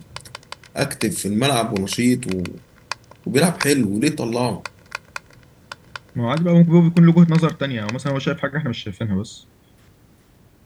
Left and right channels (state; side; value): identical; both; correlation 1.00